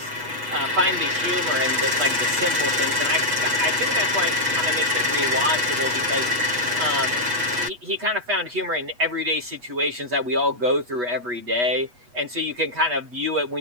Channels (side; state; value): left; late; 8.2 ms